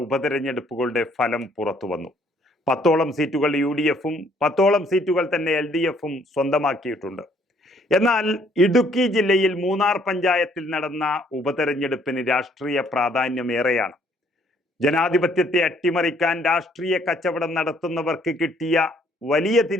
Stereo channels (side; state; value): both; normal; correlation 0.64